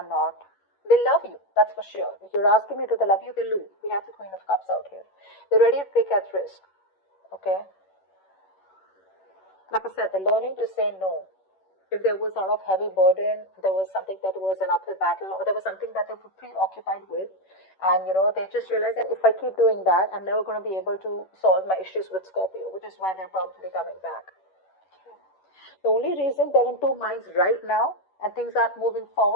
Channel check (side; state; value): right; late; 11 ms